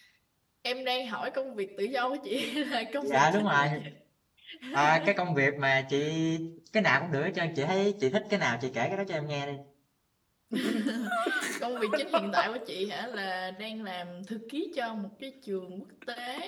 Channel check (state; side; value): identical; both; correlation 1.00